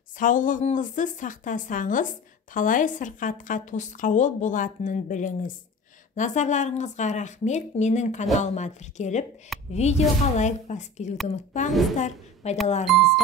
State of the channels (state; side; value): normal; both; correlation 0.36